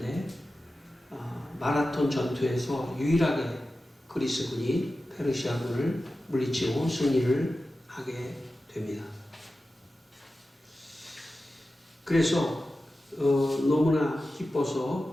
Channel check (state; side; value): normal; both; correlation 0.93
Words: 마라톤 전투에서 유일하게 그리스군이 페르시아군을 물리치고 승리를 하게 됩니다. 그래서 너무나